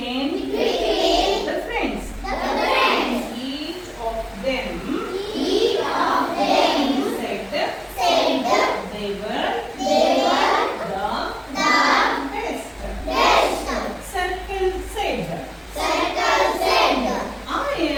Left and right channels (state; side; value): identical; both; correlation 1.00